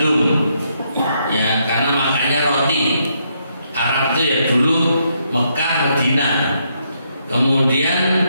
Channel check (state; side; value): inverted; both; correlation -0.76